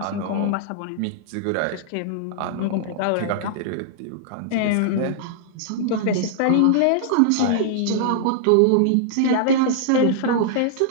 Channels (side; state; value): both; different; correlation -0.01